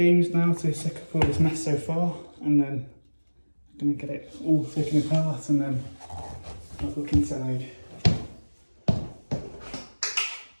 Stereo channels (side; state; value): both; inverted; correlation -1.00